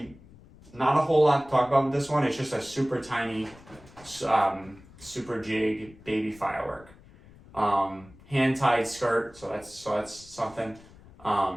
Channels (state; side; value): noise; left; rumble, 23 dB below the sound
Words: not a whole lot to talk about with this one. It's just a super tiny, super jig baby firework. Hand-tied skirt, so that's something.